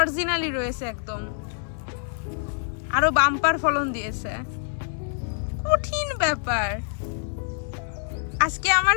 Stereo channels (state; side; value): silent; right; digital silence